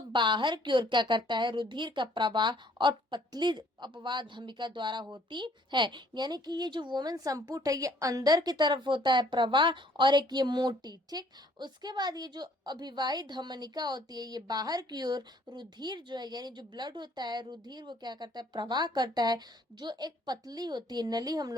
बाहर की ओर क्या करता है, रुधिर का प्रवाह और पतली अपवाह धमिका द्वारा होती है। यानी कि ये जो वोमेन संपुट है ये अंदर की तरफ होता है प्रवाह और एक ये मोटी, ठीक। उसके बाद ये जो अभिवाही धमनिका होती है ये बाहर की ओर रुधिर जो है यानी जो ब्लड होता है, रुधिर वो क्या करता है, प्रवाह करता है, जो एक पतली होती है नली हम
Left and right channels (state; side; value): normal; both; correlation 0.60